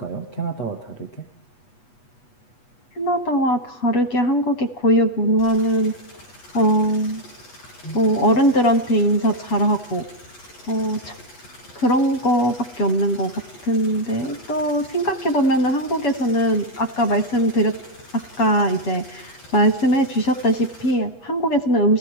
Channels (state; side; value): late; right; 8.2 ms